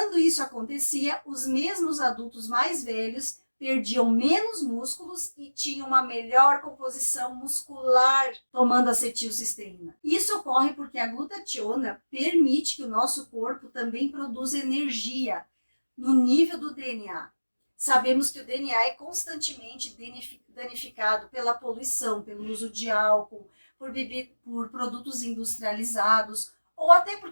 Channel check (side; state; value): both; inverted; correlation -1.00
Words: isso acontecia, os mesmos adultos mais velhos perdiam menos músculos e tinham uma melhor composição muscular tomando acetilcisteína. Isso ocorre porque a glutationa permite que o nosso corpo também produza energia no nível do DNA. Sabemos que o DNA é constantemente danificado pela poluição, pelo uso de álcool, por produtos industrializados ou até